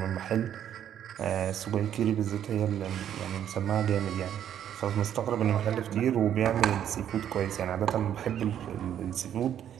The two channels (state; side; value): quieter; left; 10.0 dB